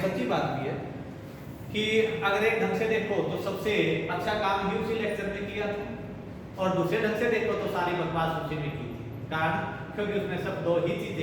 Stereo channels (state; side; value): identical; both; correlation 1.00